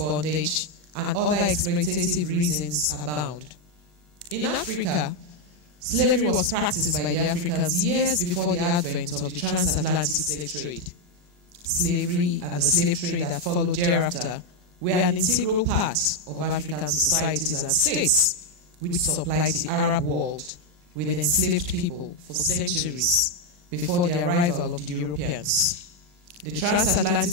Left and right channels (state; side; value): late; left; 40 ms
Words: and other exploitative reasons abound. In Africa, slavery was practiced by the Africans years before the advent of the transatlantic slave trade. Slavery and the slave trade that followed thereafter were an integral part of African societies and states, which supplied the Arab world with enslaved people for centuries before the arrival of the Europeans. The